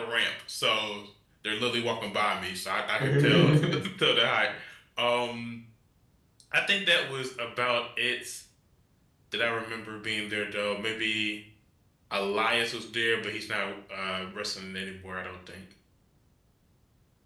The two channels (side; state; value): both; identical; correlation 1.00